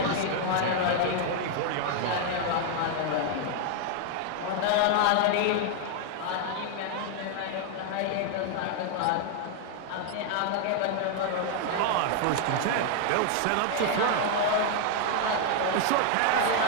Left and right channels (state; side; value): different; both; correlation 0.00